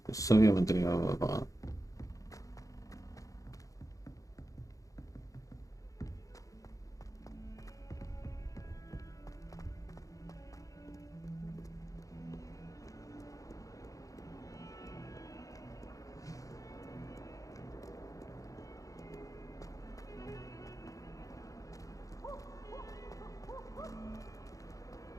se había mantenido apagada.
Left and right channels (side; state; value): right; late; 0.16 ms